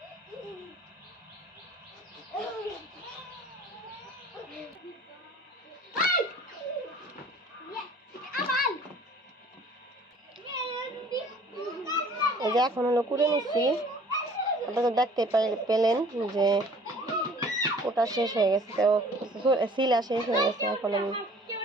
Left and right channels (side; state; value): both; normal; correlation 0.51